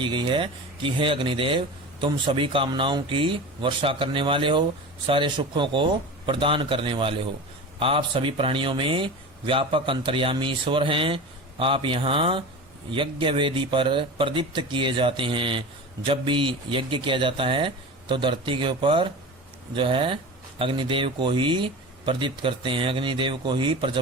गई है कि हे अग्निदेव, तुम सभी कामनाओं की वर्षा करने वाले हो, सारे सुखों को प्रदान करने वाले हो। आप सभी प्राणियों में व्यापक अंतर्यामी ईश्वर हैं। आप यहाँ यज्ञ वेदी पर प्रदीप्त किए जाते हैं। जब भी यज्ञ किया जाता है तो धरती के ऊपर जो है अग्निदेव को ही प्रदीप्त करते हैं, अग्निदेव को ही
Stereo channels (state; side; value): normal; both; correlation 0.30